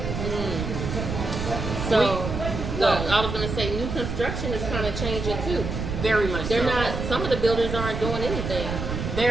So, I was going to say, new construction is kind of changing too. Very much. They're not. Some of the builders aren't doing anything.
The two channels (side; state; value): right; noise; rumble, 4 dB below the sound